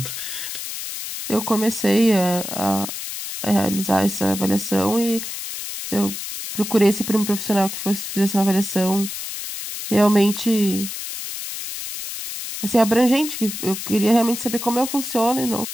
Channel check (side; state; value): left; noise; hiss, 7 dB below the sound